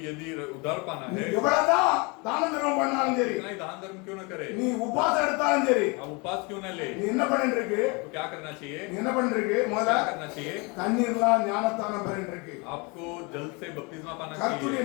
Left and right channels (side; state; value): right; quieter; 29.3 dB